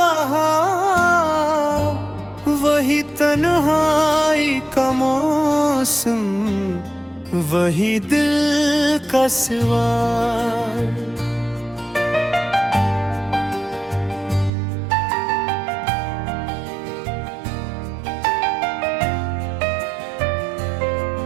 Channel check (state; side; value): drops out; left; at 14.5 s